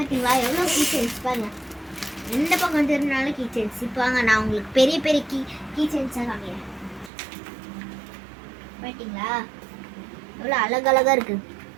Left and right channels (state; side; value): drops out; left; at 7.1 s